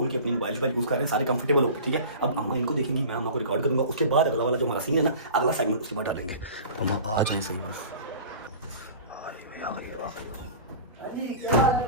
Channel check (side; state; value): both; inverted; correlation -0.39